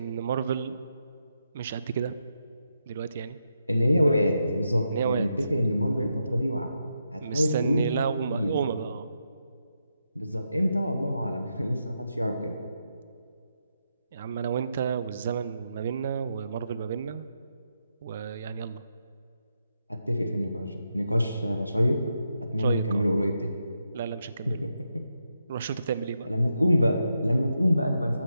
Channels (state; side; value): inverted; both; correlation -0.84